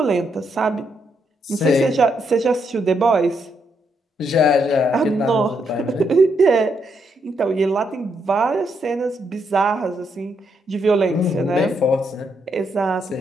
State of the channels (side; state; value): both; normal; correlation 0.77